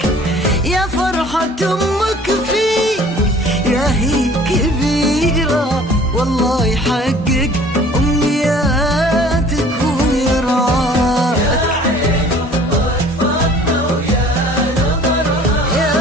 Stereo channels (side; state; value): both; normal; correlation 0.50